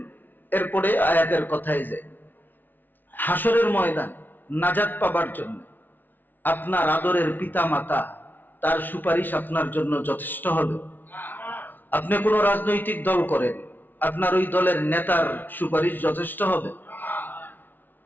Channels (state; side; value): late; right; 0.088 ms